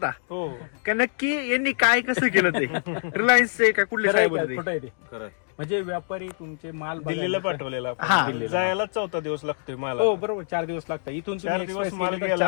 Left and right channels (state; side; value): silent; right; digital silence